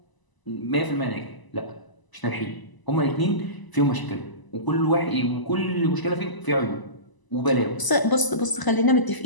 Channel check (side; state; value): right; late; 1.0 ms